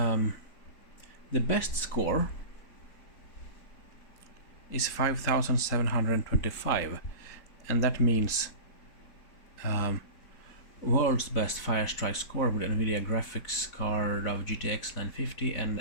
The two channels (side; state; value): right; late; 4.0 ms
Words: best score is 5,725, and that means world's best Firestrike score with NVIDIA graphics card of GTX950